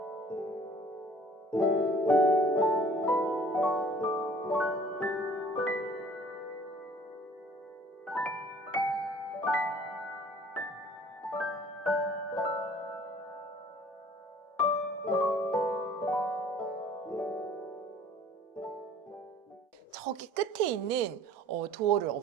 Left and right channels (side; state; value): both; normal; correlation 0.52